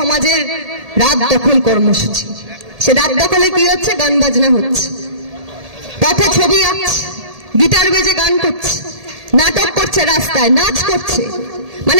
রাত দখল কর্মসূচি। সে রাত দখলে কি হচ্ছে? গান বাজনা হচ্ছে, পথে ছবি আঁকছে, গিটার বেজে গান করছে, নাটক করছে, রাস্তায় নাচ করছে,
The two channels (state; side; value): late; left; 1.7 ms